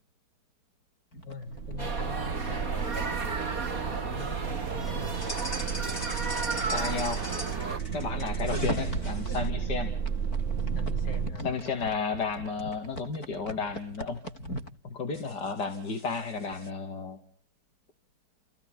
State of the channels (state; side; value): late; right; 4.5 ms